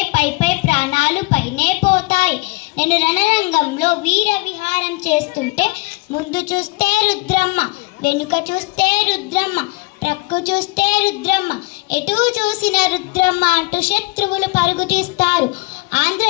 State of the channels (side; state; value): right; quieter; 25.0 dB